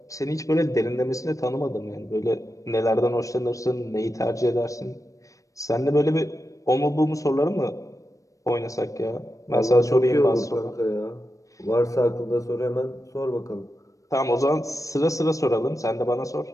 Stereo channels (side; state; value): right; late; 0.16 ms